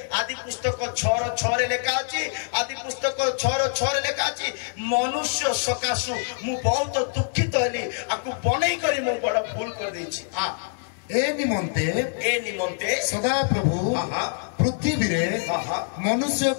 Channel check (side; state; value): right; silent; digital silence